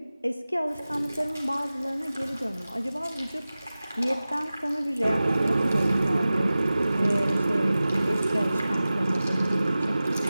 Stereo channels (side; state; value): both; inverted; correlation -0.96